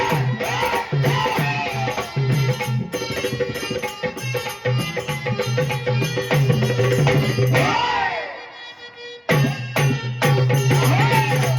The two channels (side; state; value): both; identical; correlation 1.00